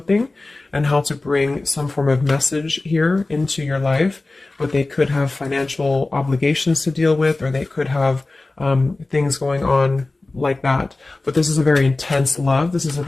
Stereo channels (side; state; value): right; quieter; 3.2 dB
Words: and how to bring some form of message here into your life. But they could have financial obligations to deal with, or they could have things going on like that. But this is a very intense love. This is a